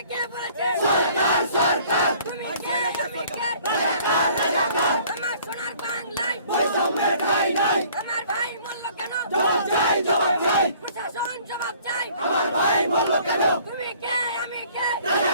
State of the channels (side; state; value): both; inverted; correlation -0.55